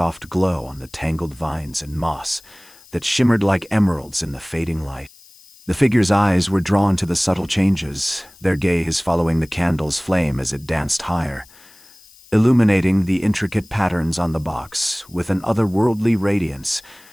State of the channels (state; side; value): noise; left; hiss, 25 dB below the sound